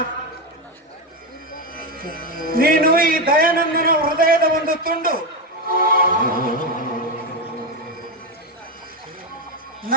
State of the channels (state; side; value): normal; both; correlation 0.10